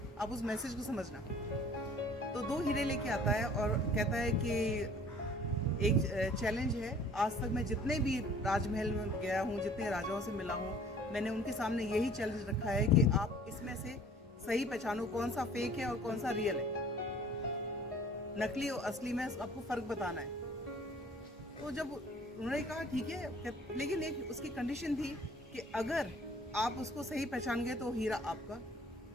आप उस मैसेज को समझना। तो 2 हीरे लेके आता है और कहता है कि एक चैलेंज है, आज तक मैं जितने भी राजमहल में गया हूँ, जितने राजाओं से मिला हूँ, मैंने उनके सामने यही चैलेंज रखा है कि आप इसमें से सही पहचानो कौन सा फेक है और कौन सा रियल है, नकली और असली में आपको फर्क बताना है। तो जब उन्होंने कहा ठीक है, लेकिन एक उसकी कंडीशन थी कि अगर आप उसको सही पहचान गए तो हीरा आपका,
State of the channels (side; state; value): both; normal; correlation 0.52